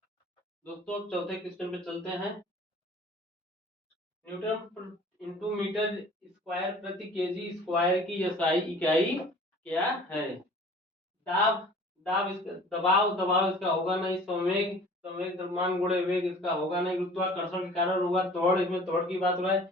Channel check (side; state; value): both; normal; correlation 0.47